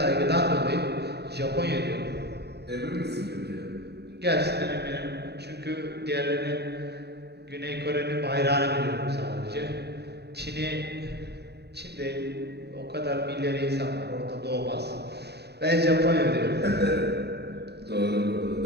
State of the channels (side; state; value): left; late; 0.48 ms